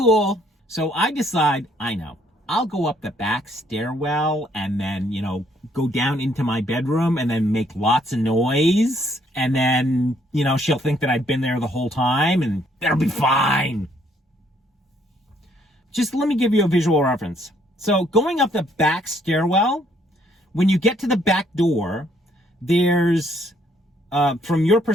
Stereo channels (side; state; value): both; normal; correlation 0.68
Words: So I decide, I'll go up the back stairwell and then, go down into my bedroom and then make lots of noise. And then, she'll think that I've been there the whole time and that'll be fine. Just let me give you a visual reference. So going up the back stairwell, when you get to the back door, there's, from your